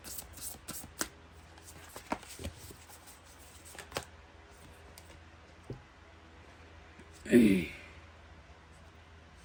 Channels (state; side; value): identical; both; correlation 1.00